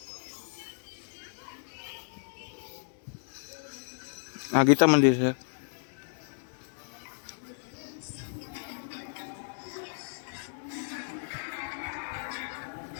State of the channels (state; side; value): silent; right; digital silence